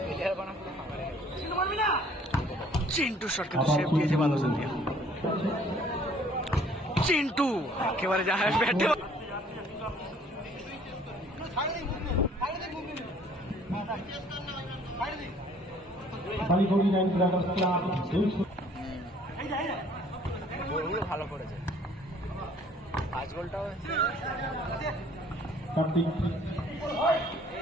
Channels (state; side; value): normal; both; correlation 0.57